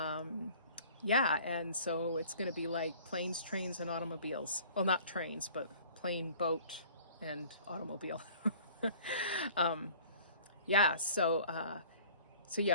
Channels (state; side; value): inverted; both; correlation -0.49